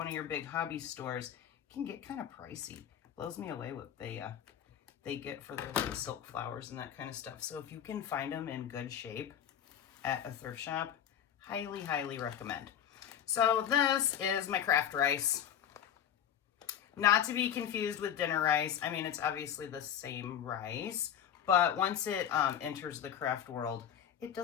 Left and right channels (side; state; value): right; quieter; 9.5 dB